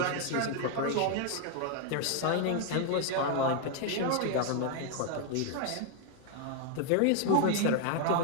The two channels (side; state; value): both; different; correlation 0.01